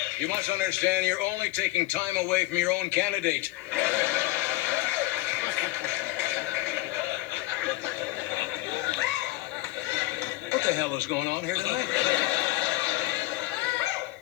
You must understand you're only taking time away from your own candidate. What the hell is going on here tonight?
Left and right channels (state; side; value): quieter; right; 18.4 dB